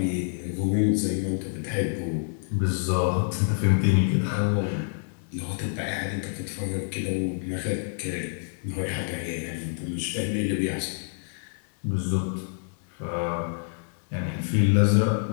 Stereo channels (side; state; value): right; silent; digital silence